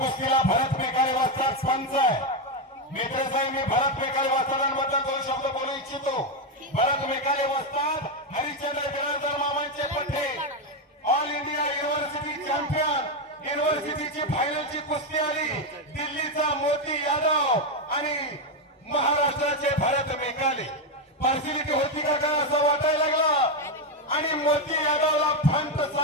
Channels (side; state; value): both; normal; correlation 0.06